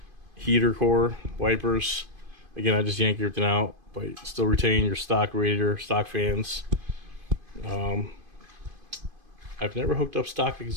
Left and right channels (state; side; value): late; left; 2.5 ms